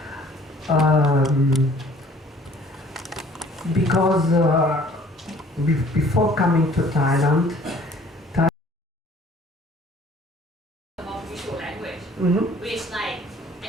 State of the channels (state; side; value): normal; both; correlation 0.54